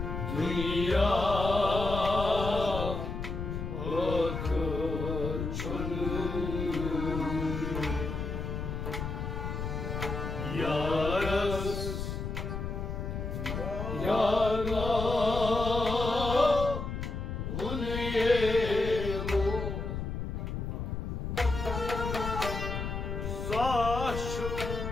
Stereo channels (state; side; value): noise; left; rumble, 4 dB below the sound